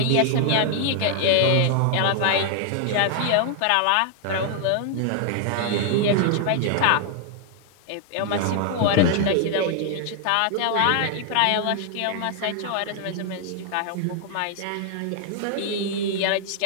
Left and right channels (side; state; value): both; different; correlation 0.00